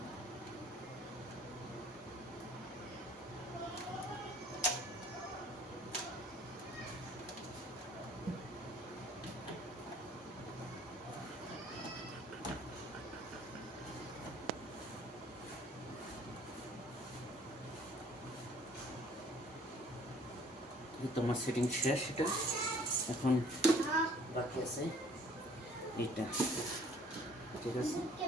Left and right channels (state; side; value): normal; both; correlation 0.55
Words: তোমার সেটিং শেষ। এটা এখন বাকি আছে এইটা, ঠিক আছে?